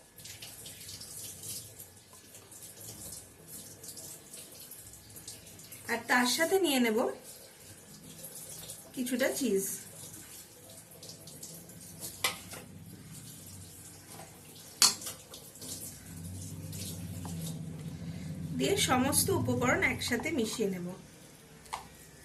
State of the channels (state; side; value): identical; both; correlation 1.00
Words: আর তার সাথে নিয়ে নেব কিছুটা চিজ। দিয়ে সমস্ত উপকরণ একসাথে মিশিয়ে নেব।